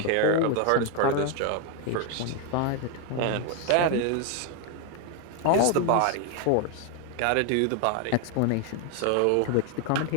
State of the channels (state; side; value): different; both; correlation 0.01